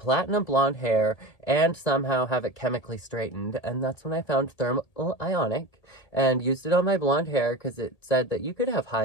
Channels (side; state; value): right; late; 1.8 ms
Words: blonde hair, and somehow have it chemically straightened, and that's when I found Thermal Ionic and used it on my blonde hair because it said that you could have